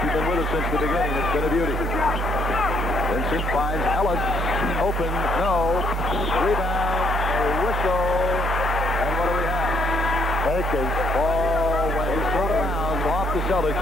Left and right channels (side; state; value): both; normal; correlation 0.69